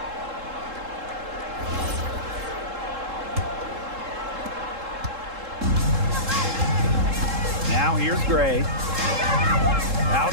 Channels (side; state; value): left; late; 3.7 ms